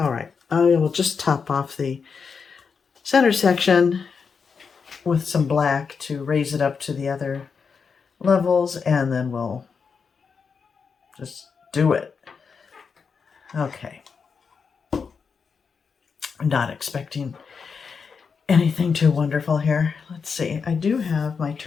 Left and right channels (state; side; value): quieter; right; 5.7 dB